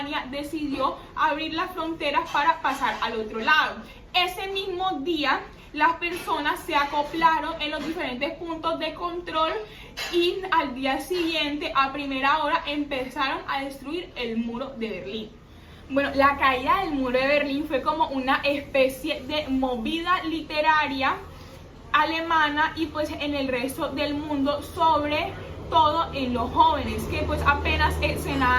decidió abrir las fronteras para pasar al otro lado. Ese mismo día, las personas se acoplaron en los diferentes puntos de control y al día siguiente, a primera hora, empezaron a destruir el muro de Berlín. Bueno, la caída del muro de Berlín fue como una especie de movida literaria alemana y pues en el resto del mundo, sobre todo en los jóvenes que pues apenas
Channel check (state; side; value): identical; both; correlation 1.00